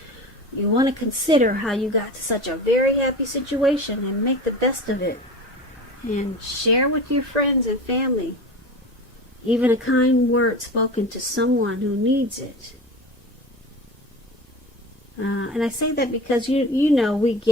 You want to consider how you got to such a very happy situation and make the best of it. And share with your friends and family. Even a kind word spoken to someone who needs it. And I say that because you know we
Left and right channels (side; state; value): both; normal; correlation 0.32